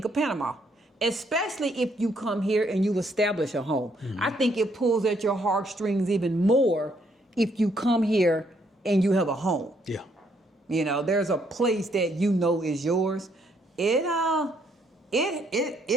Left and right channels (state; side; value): normal; both; correlation 0.70